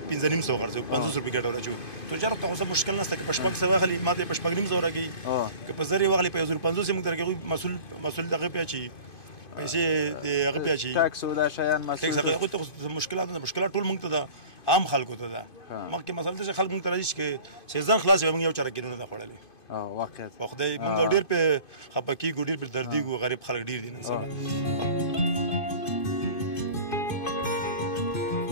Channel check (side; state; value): right; late; 2.5 ms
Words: 1500 خرڅو 500 روپۍ ګټه راچو تو جره ته اوسه مشکل نشته که په شپږ سو غلي ماته په شپږ نیم زو راګي که په زری وغلي په 1500 موږ درګو مسول دغه پیاچی پیسې دغه پیاچی ټاکس او دا شیان مسول هغه ته مشکلات ټول موږ ته ده عام خلکو ته ده مخکې مسله چې خلک موږ ته راځي چې سیزن خلاص موږ یو چاره کینو نه خوړلې واقعیت په خدای موږ ډیر په خپکی ګډیر په دردي ګو غریب خلک ډیر دي نه